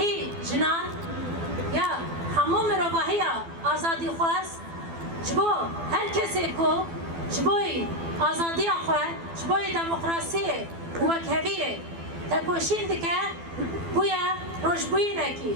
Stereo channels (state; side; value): late; left; 12 ms